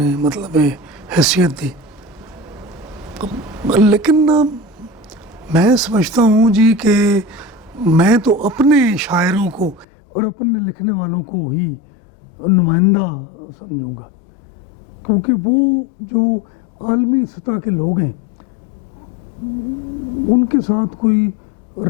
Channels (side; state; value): right; drops out; at 9.9 s